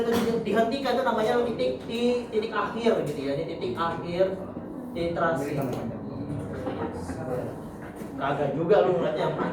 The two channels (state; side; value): identical; both; correlation 1.00